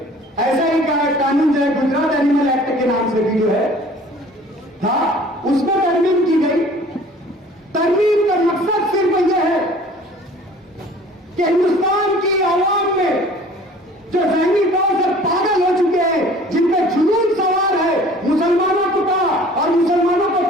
ऐसा ही कानून जो है गुजरात एनिमल एक्ट के नाम से भी जो है था, उसमें तरमीम की गई। तरमीम का मकसद सिर्फ यह है कि हिंदुस्तान की आवाम में जो जहनी तौर से पागल हो चुके हैं, जिनपे जुनून सवार है मुसलमानों को और मुसलमानों को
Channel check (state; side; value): normal; both; correlation 0.49